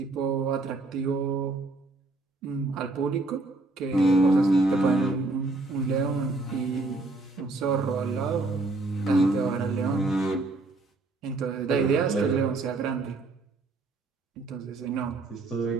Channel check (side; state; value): left; quieter; 3.2 dB